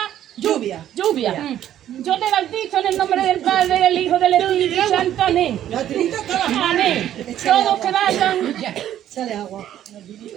Lluvia. Yo te bautizo en el nombre del Padre, del Hijo, del Espíritu Santo. Amén. Amén. Todos que vayan. Sale agua.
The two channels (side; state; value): left; quieter; 11.5 dB